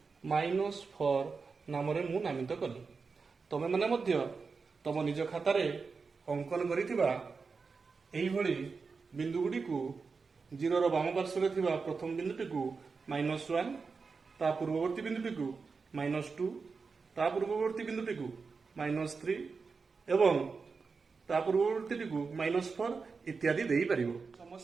-4 नाम रे मु नामित कली। तमे माने मध्य तम निज खातारे अंकन करिथिबा एही भली बिंदु गुडी को 0 रो बाम पार्श्व रे थिबा प्रथम बिंदुटी को -1, ता पूर्ववर्ती बिंदुटी को -2, ता पूर्ववर्ती बिंदुटी को -3 एवं ता पूर्ववर्ती को -4 इत्यादि देई परिबो।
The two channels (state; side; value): quieter; left; 4.8 dB